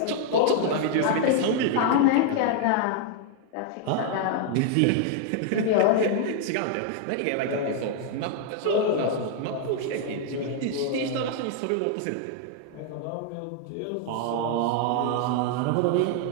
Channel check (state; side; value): different; both; correlation 0.00